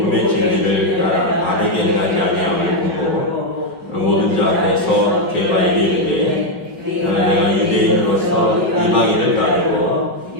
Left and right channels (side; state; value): right; late; 5.4 ms